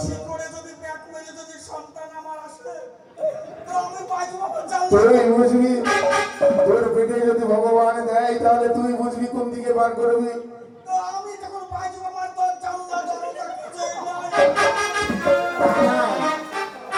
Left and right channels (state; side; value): identical; both; correlation 1.00